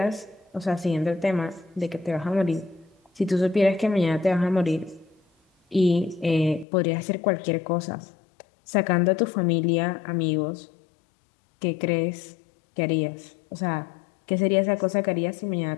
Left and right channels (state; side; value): drops out; right; at 6.7 s